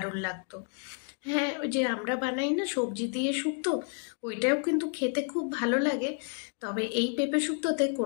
লাগতো। হ্যাঁ, ওই যে আমরা বানাই না সবজি দিয়ে শুক্তো, ওইটাও কিন্তু খেতে খুব ভালো লাগে। তবে এই পেঁপে শুক্তোতে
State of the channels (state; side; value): quieter; right; 40.0 dB